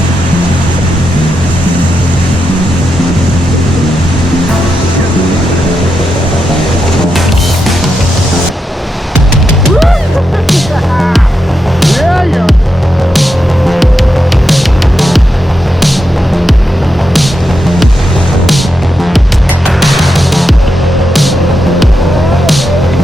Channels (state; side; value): normal; both; correlation 0.85